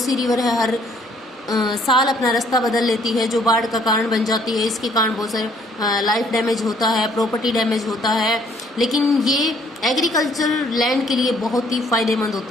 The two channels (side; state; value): both; normal; correlation 0.63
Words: रिवर है, हर साल अपना रास्ता बदल लेती है, जो बाढ़ का कारण बन जाती है। इसके कारण बहुत सारे लाइफ डैमेज होता है, प्रॉपर्टी डैमेज होता है, लेकिन ये एग्रीकल्चर लैंड के लिए बहुत ही फायदेमंद